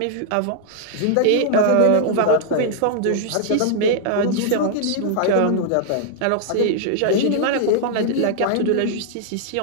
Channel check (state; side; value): different; both; correlation -0.01